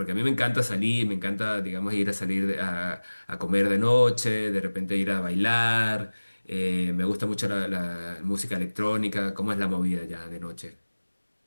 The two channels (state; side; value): inverted; both; correlation -1.00